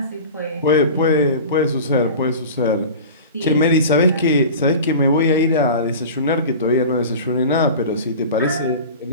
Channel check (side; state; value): both; inverted; correlation -0.35